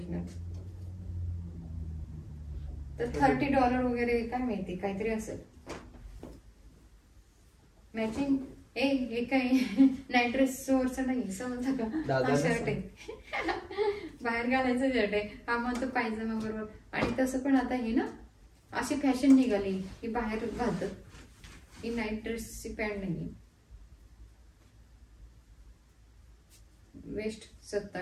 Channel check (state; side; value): identical; both; correlation 1.00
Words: तर $30 वगैरे काय माहिती, काहीतरी असेल. मॅचिंग हे काय नाईट ड्रेस वरचं नाही, समजलं का? हा शर्ट आहे, बाहेर घालायचं शर्ट आहे. हा म्हणतो पायजमा बरोबर. आणि तसं पण आता हे ना अशी फॅशन निघाली की बाहेर घालतात. ही नाईट ड्रेसची पॅन्ट नाही. वेस्ट